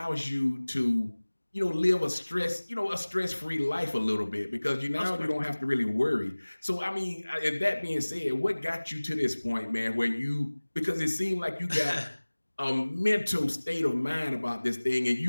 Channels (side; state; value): both; inverted; correlation -1.00